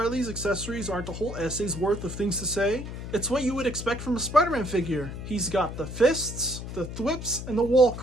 accessories aren't a whole essay's worth of things to say. It's what you would expect from a Spider-Man figure. He's got the fists, the thwips, and the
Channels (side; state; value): left; noise; hum, 8 dB below the sound